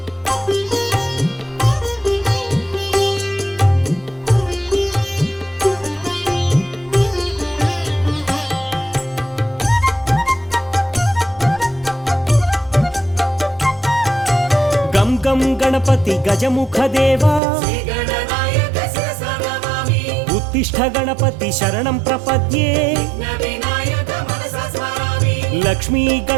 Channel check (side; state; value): left; drops out; at 17.4 s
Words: మూలం గణపతి గజముఖ దేవా శ్రీగణనాయక శిరసా నమామి ఉత్తిష్ట గణపతి శరణం ప్రపద్యే విఘ్నవినాయక మనసా స్మరామి లక్ష్మీ